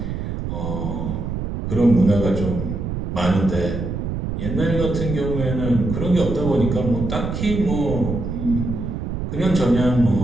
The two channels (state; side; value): noise; right; rumble, 4 dB below the sound